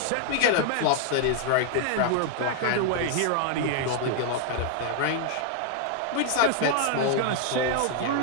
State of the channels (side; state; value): both; different; correlation 0.00